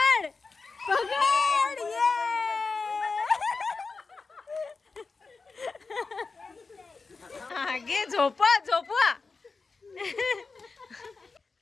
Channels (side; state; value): right; quieter; 4.3 dB